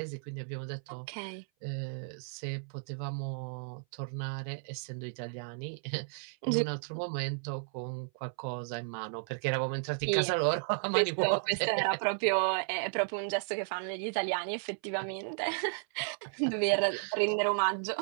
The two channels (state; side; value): silent; left; 55 dB below the other